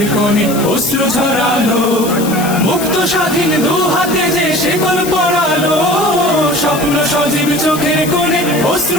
কোণে অশ্রু ঝরালো, মুক্ত স্বাধীন দু হাতে যে শেকল পরালো, স্বপ্ন সজীব চোখের কোণে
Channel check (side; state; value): left; noise; hiss, 10 dB below the sound